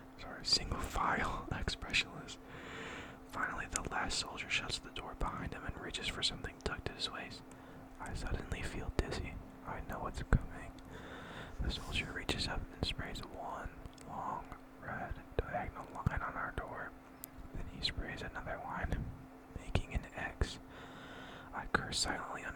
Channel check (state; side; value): identical; both; correlation 1.00